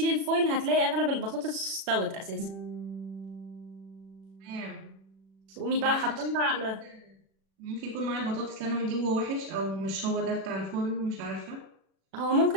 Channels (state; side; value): late; left; 36 ms